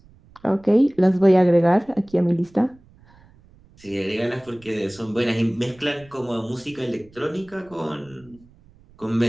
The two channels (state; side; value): noise; right; rumble, 27 dB below the sound